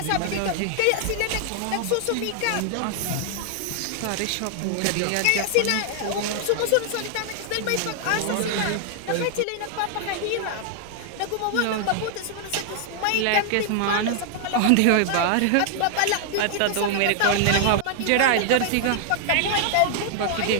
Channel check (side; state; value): both; different; correlation 0.00